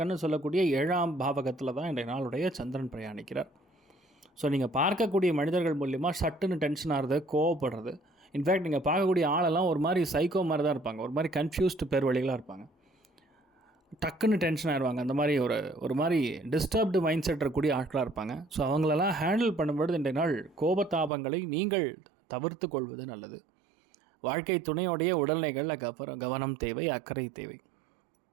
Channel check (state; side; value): drops out; left; at 21.1 s